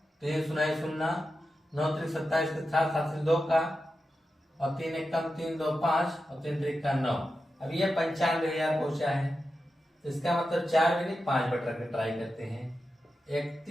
3 0 0, 9 3 27 के 7 7 2 का, और 3 1 कम 3 2 5, और 3 3 का 9। अब ये 95,000 पहुंचा है। तो इसका मतलब 4 में नहीं 5 बट रख के ट्राई करते हैं।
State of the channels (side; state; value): both; normal; correlation 0.90